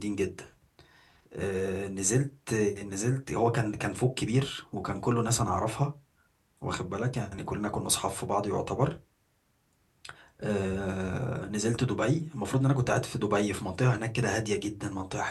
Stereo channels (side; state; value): both; identical; correlation 1.00